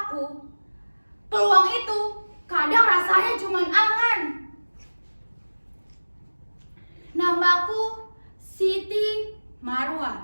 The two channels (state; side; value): inverted; both; correlation -1.00